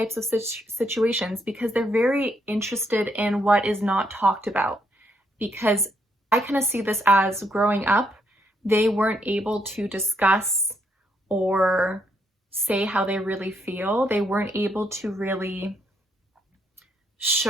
of situations, because they're very interested in what is not talked about. Because I kind of see this as growing up, they weren't able to discuss or say how they really feel. They weren't able to really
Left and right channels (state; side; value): normal; both; correlation 0.75